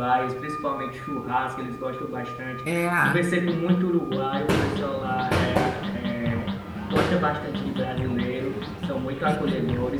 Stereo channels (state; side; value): identical; both; correlation 1.00